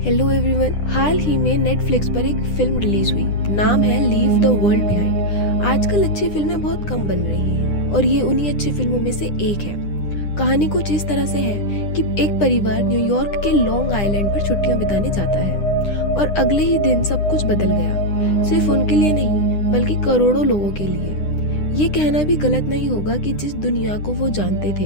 Hello everyone. हाल ही में Netflix पर एक फिल्म रिलीज हुई, नाम है लीव द वर्ल्ड बिहाइंड। आजकल अच्छी फिल्में बहुत कम बन रही हैं और ये उन्हीं अच्छी फिल्मों में से एक है। कहानी कुछ इस तरह से है कि एक परिवार न्यूयॉर्क के लॉन्ग आइलैंड पर छुट्टियां बिताने जाता है और अगले ही दिन सब कुछ बदल गया। सिर्फ उनके लिए नहीं बल्कि करोड़ों लोगों के लिए। ये कहना भी गलत नहीं होगा कि जिस दुनिया को वो जानते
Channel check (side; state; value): right; late; 9.9 ms